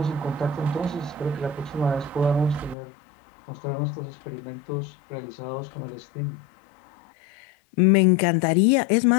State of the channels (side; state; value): right; drops out; at 2.8 s